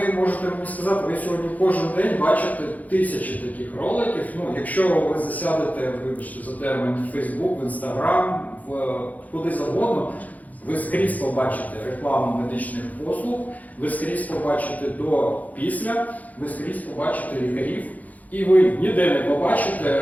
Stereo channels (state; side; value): late; right; 0.077 ms